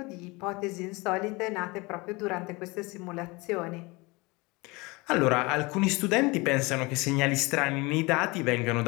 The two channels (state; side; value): quieter; right; 24.8 dB